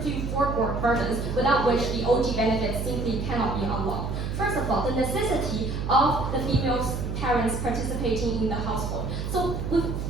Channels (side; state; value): right; noise; hum, 4 dB below the sound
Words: to you 4 burdens without which the OG benefits simply cannot be unlocked. First of all, the necessity of the female parents participating in the household. So